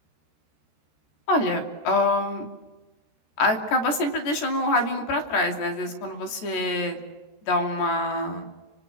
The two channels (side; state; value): right; late; 13 ms